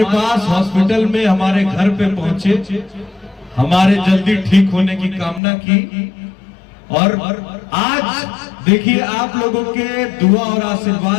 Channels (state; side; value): drops out; right; at 5.4 s